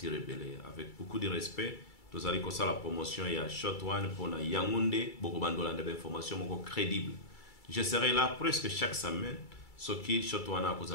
et belé avec beaucoup de respect. Nous allons comme ça la promotion il y a Shotone pour na Yaoundé, beaucoup bandolande d'informations beaucoup crédibles. Je serai là presque chaque semaine. Ce qui Shotone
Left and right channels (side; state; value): right; late; 2.3 ms